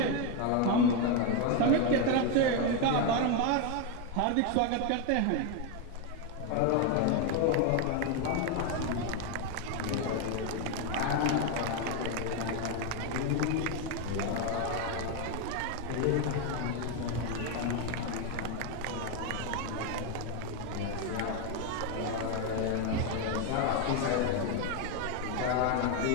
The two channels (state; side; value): different; both; correlation 0.02